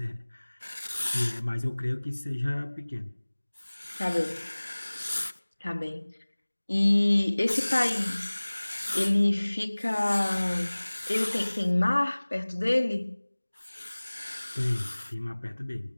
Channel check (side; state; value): both; inverted; correlation -1.00